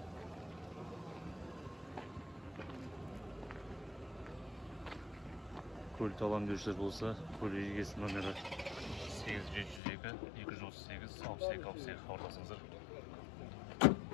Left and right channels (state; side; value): drops out; right; at 9.8 s